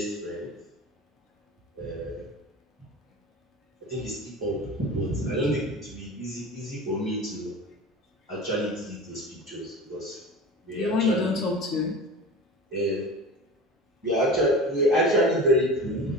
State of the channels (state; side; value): normal; both; correlation 0.33